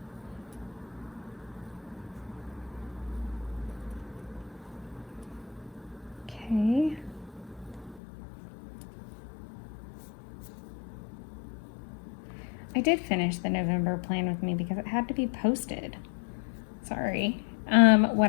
okay. I did finish the November plan with me because it had to be posted. Sorry.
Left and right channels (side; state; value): right; drops out; at 8.0 s